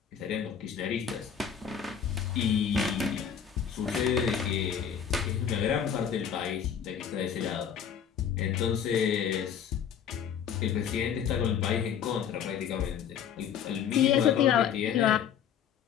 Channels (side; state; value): right; quieter; 8.3 dB